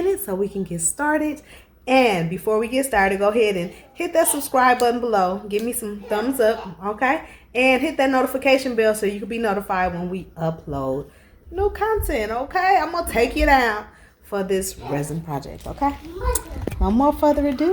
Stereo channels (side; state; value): both; identical; correlation 1.00